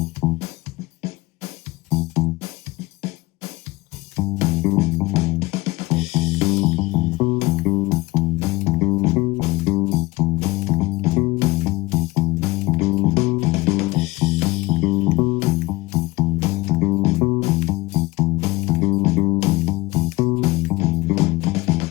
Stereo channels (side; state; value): right; quieter; 21.0 dB